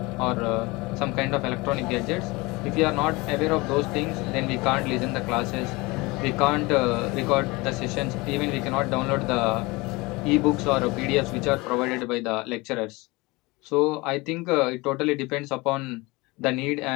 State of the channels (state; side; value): quieter; right; 23.6 dB